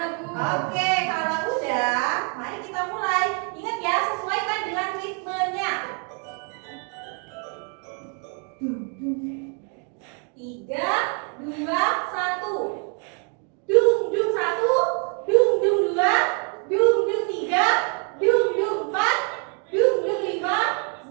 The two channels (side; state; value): left; quieter; 39.6 dB